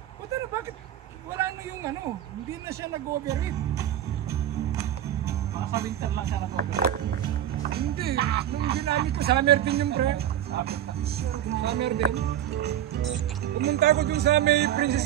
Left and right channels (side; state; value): left; quieter; 11.3 dB